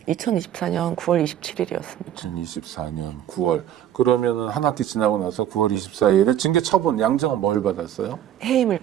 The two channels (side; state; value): left; quieter; 11.0 dB